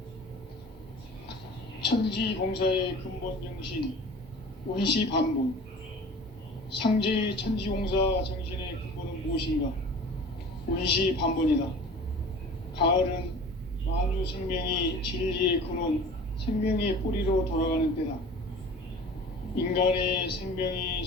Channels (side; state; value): both; normal; correlation 0.42